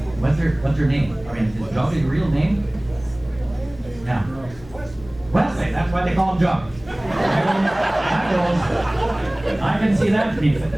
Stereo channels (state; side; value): noise; left; hum, 20 dB below the sound